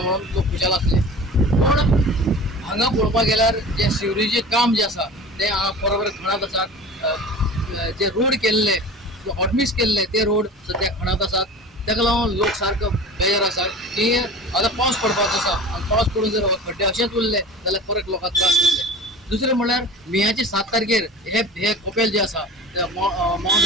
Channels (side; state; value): both; normal; correlation 0.37